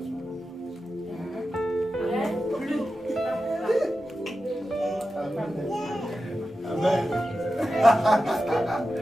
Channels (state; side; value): normal; both; correlation 0.92